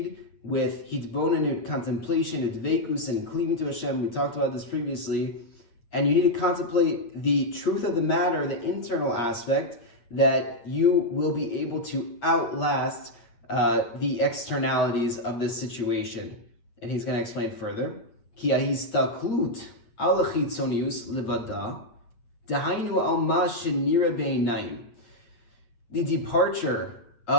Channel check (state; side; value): late; right; 8.6 ms